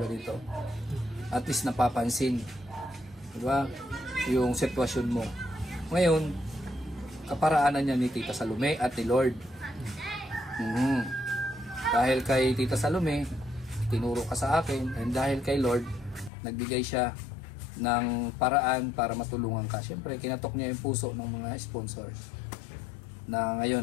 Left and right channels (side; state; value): right; drops out; at 16.3 s